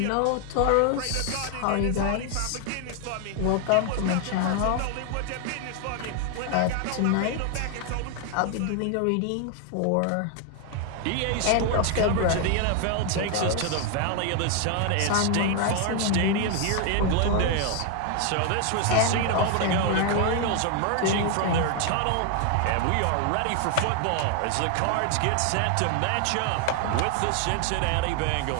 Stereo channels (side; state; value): both; different; correlation 0.00